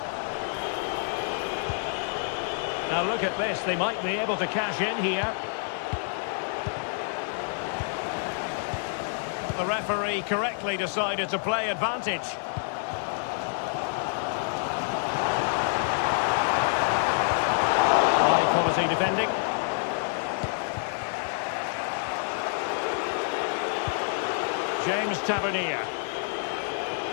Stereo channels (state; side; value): silent; right; digital silence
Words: Now look at this, they might be able to cash in here. The referee correctly decided to play advantage. High quality defending. James Tavernier.